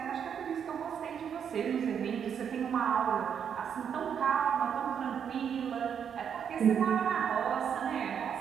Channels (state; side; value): quieter; left; 7.8 dB